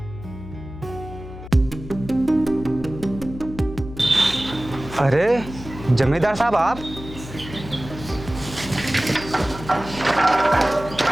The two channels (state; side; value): noise; left; hum, 13 dB below the sound